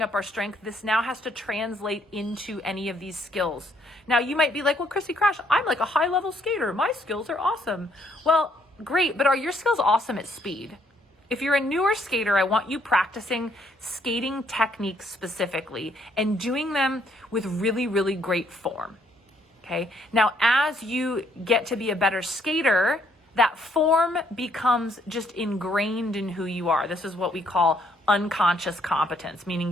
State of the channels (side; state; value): both; normal; correlation 0.69